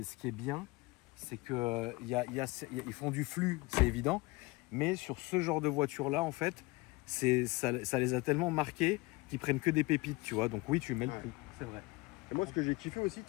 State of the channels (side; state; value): right; quieter; 23.4 dB